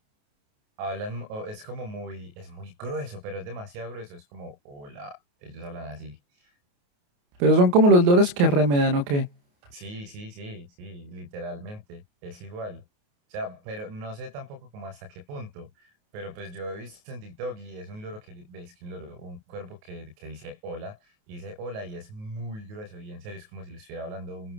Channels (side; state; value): left; late; 28 ms